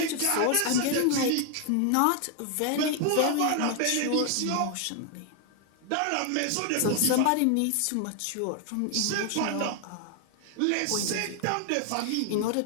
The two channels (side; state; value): both; different; correlation 0.01